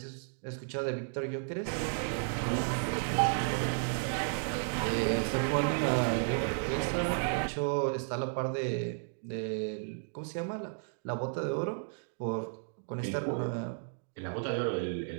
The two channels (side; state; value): left; silent; digital silence